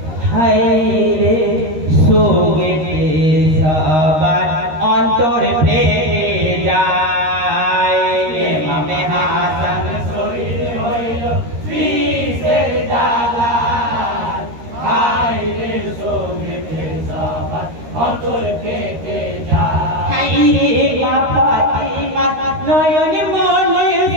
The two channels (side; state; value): left; late; 13 ms